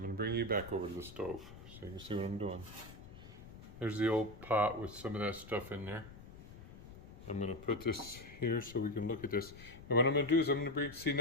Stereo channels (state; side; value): noise; left; rumble, 16 dB below the sound